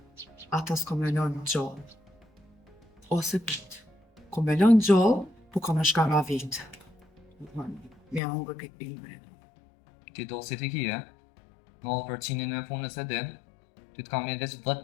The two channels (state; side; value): drops out; right; at 8.2 s